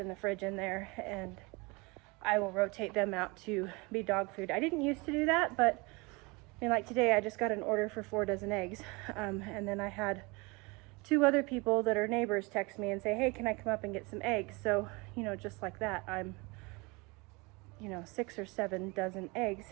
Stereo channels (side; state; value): left; quieter; 26.7 dB